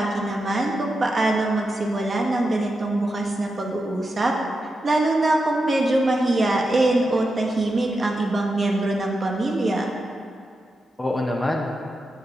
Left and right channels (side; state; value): both; normal; correlation 0.88